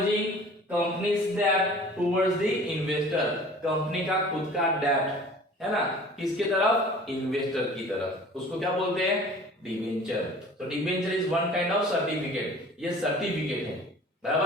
companies डेब्ट टुवर्ड्स द इन्वेस्टर। कंपनी का खुद का डेब्ट है ना, किसके तरफ? इन्वेस्टर की तरफ। उसको क्या बोलते हैं? डिबेंचर। तो debenture is one kind of certificate. ये सर्टिफिकेट है,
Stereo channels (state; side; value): normal; both; correlation 0.46